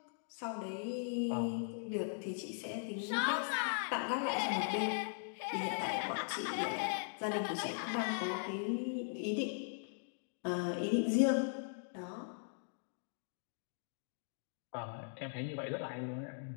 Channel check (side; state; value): right; silent; digital silence